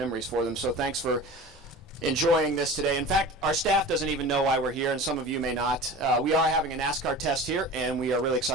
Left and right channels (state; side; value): normal; both; correlation 0.36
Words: for them. So thanks for enjoying this today. In fact, our staff doesn't even know why we're here, and some of you may not. We are having a NASCAR test here, and we are really